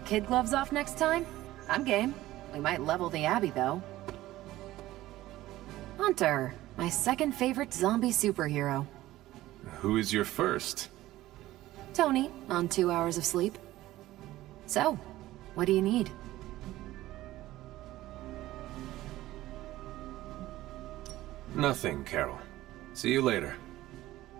gloves off next time? I'm game. We might level the Abbey, though. Hunter, my second favorite zombie superhero. Who is your first? Tony, on 2 hours of sleep. So, what do you need? Nothing, Carol. See you later.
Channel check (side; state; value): left; quieter; 16.0 dB